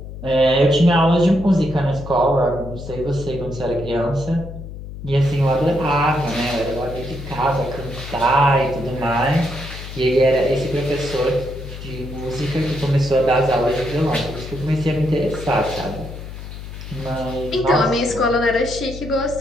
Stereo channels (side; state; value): left; noise; hum, 11 dB below the sound